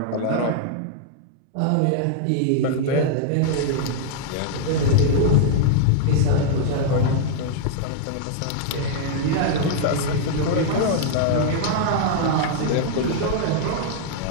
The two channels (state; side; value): different; both; correlation -0.01